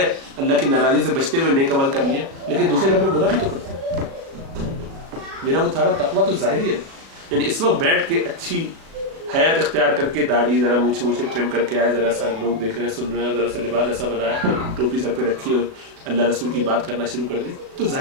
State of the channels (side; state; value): left; late; 37 ms